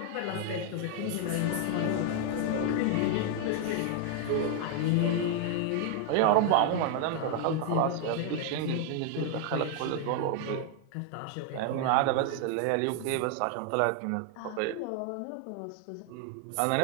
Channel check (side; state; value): both; different; correlation 0.00